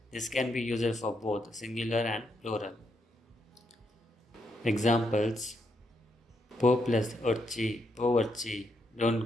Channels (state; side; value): normal; both; correlation 0.79